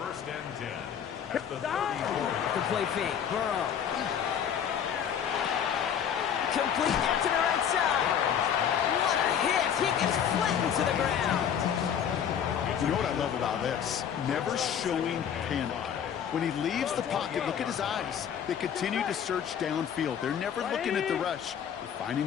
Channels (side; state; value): right; quieter; 8.5 dB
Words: first and 10 at the 34. The play fake. Burrow. Complete out to the right side. What a hit. He gets flattened to the ground. You know what I love about this? Never showing panic. When he leaves the pocket, look at his eyes. They continue to search downfield. They're never looking at the rush. They're finding